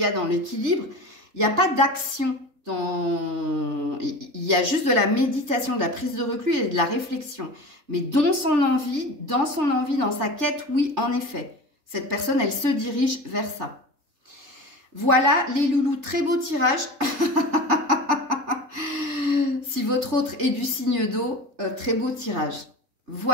a dans l'équilibre, il n'y a pas d'action, il y a juste de la méditation, de la prise de recul et de la réflexion. Mais dans son envie, dans sa quête, oui, en effet, cette personne, elle se dirige vers ça. Voilà les loulous, très beau tirage. Si votre autre est du signe d'eau, très beau tirage.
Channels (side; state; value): left; late; 3.3 ms